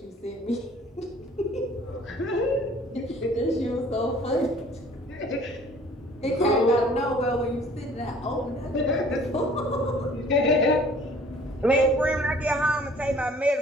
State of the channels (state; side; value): normal; both; correlation 0.53